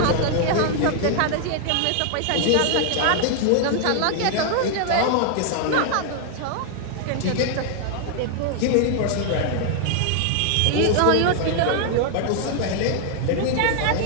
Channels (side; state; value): both; different; correlation 0.00